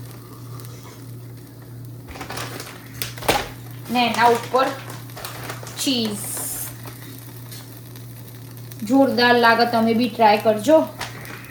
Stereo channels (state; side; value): identical; both; correlation 1.00